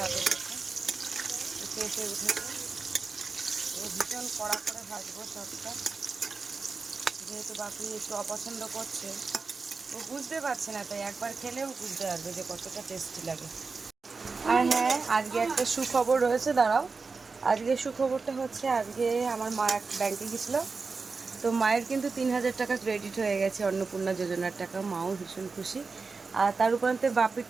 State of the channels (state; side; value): quieter; left; 4.4 dB